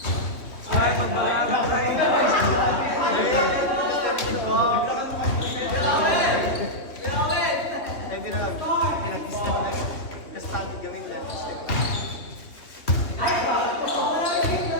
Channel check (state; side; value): late; right; 3.1 ms